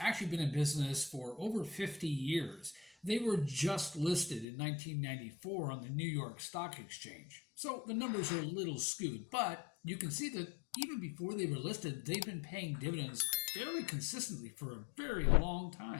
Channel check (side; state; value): right; drops out; at 4.5 s